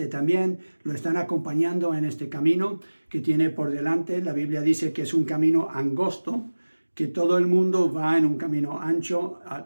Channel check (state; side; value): inverted; both; correlation -1.00